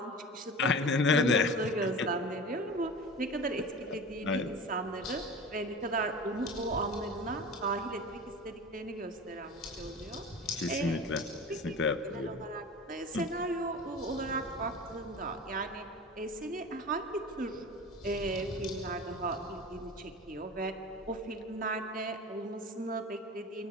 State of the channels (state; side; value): normal; both; correlation 0.34